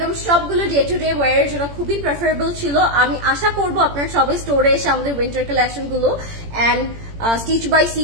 সবগুলো ডে টু ডে ওয়ারের জন্য খুবই প্রেফারেবল ছিল. আমি আশা করবো আপনারা সবাই স্টোরে এসে আমাদের উইন্টার কালেকশন গুলো and stitch by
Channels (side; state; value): left; late; 18 ms